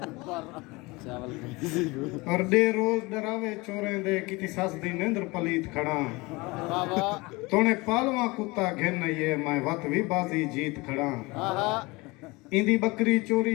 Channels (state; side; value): quieter; right; 23.9 dB